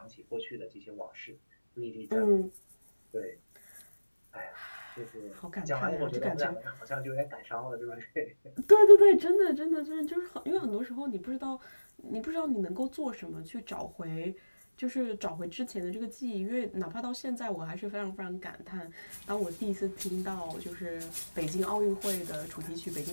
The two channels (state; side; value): inverted; both; correlation -1.00